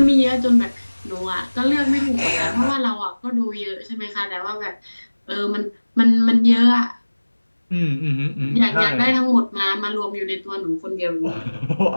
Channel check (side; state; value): both; inverted; correlation -1.00